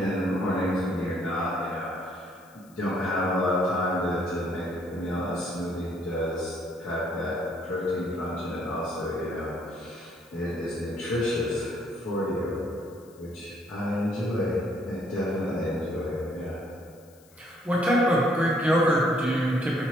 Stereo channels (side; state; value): left; noise; hiss, 28 dB below the sound